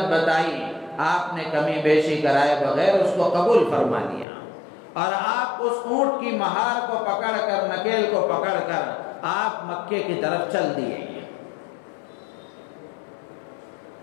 بتائی، آپ نے کمی بیشی کرائے بغیر اس کو قبول فرما لیا، اور آپ اس اونٹ کی مہار کو پکڑ کر، نکیل کو پکڑ کر آپ مکے کی طرف چل دیے۔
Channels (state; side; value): drops out; right; at 4.2 s